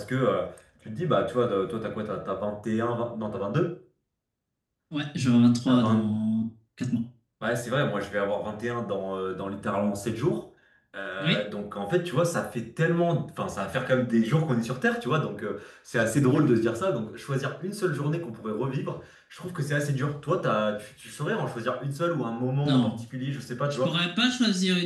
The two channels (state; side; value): identical; both; correlation 1.00